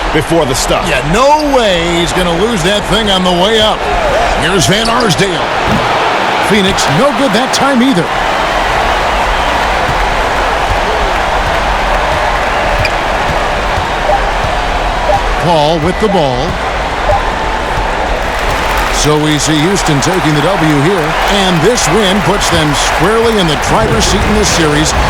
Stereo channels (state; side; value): identical; both; correlation 1.00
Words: before the stuff? Yeah, no way he's going to lose that thing on the way up. Here's Van Arsdale. Phoenix, no good that time either. Paul with the ball. So we see Houston taking the W here, and this win puts them squarely in the driver's seat in this series.